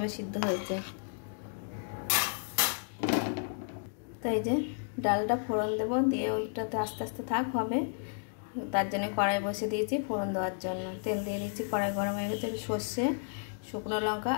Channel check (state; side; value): silent; right; digital silence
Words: সিদ্ধ হয়েছে। তো এই যে ডালটা ফোড়ন দেবো, দিয়ে ওইটাতে আস্তে আস্তে থাক হবে, তার জন্য কড়াই বসে দিয়েছি ফোড়ন দেওয়ার জন্য। তেল দিয়ে দিয়েছি, কড়াই গরম হয়ে গেছে। সর্ষে, শুকনো লঙ্কা